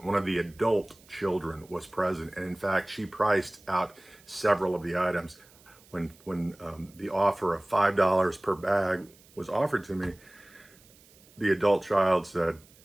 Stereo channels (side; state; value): right; noise; hiss, 27 dB below the sound